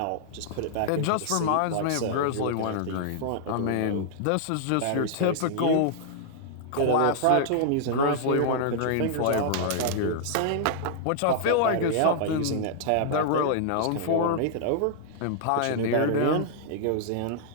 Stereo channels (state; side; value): different; both; correlation -0.01